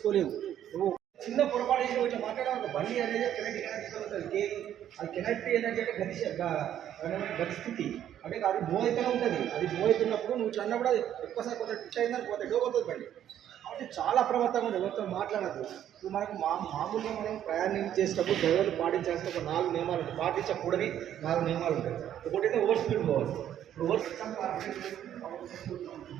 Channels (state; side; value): quieter; left; 10.7 dB